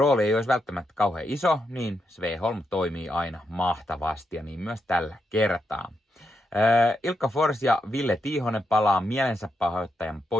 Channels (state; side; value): normal; both; correlation 0.83